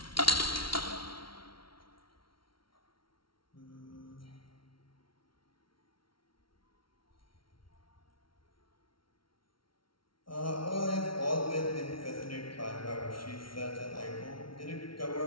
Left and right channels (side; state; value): right; late; 0.74 ms